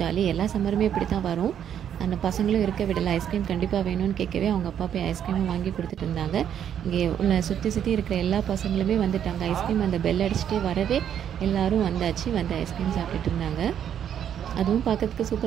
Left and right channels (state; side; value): quieter; left; 9.3 dB